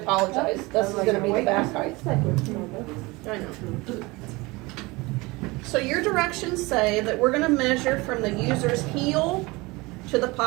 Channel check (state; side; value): quieter; left; 23.4 dB